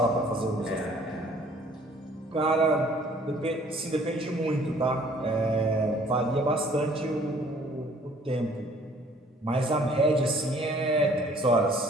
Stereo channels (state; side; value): normal; both; correlation 0.57